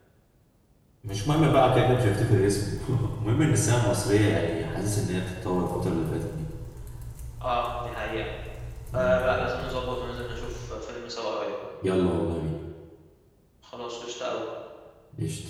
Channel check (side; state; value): both; identical; correlation 1.00